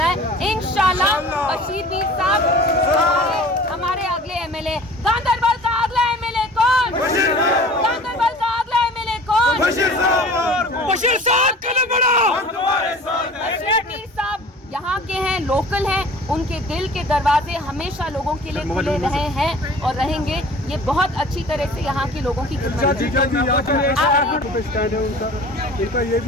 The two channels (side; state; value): both; normal; correlation 0.44